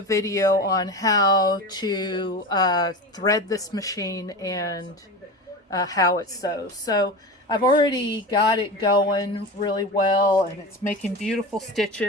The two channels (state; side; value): normal; both; correlation 0.27